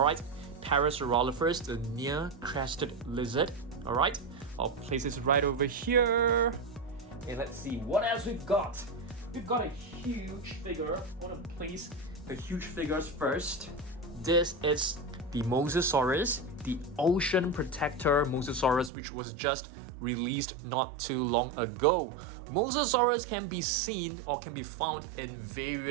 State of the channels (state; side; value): drops out; left; at 18.9 s